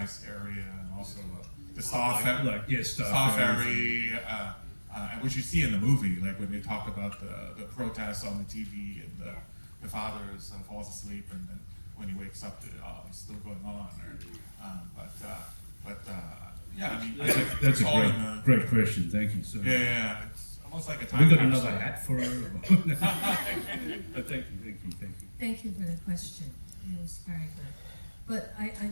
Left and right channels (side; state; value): both; inverted; correlation -1.00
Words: area and also the Star Ferry, which you see in the movie, like when they talk about the protests on the TV and the father falls asleep and then when he wakes up it's still going on. Yeah, I mean that's a great question. Thank you. So yeah, it's almost like a time. We got capsule. another hat for her. But thank you. Thank you for the question. It was very good. But I